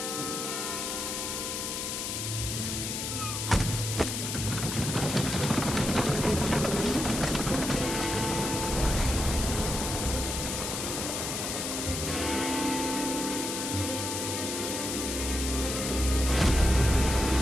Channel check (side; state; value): left; noise; hiss, 3 dB below the sound